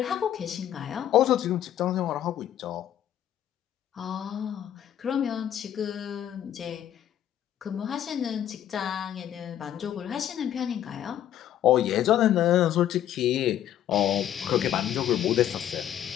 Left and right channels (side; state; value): right; quieter; 11.0 dB